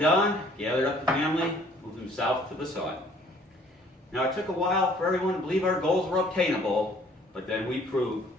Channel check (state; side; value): normal; both; correlation 0.58